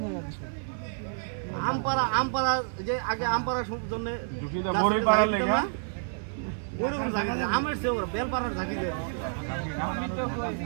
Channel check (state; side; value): silent; left; 59 dB below the other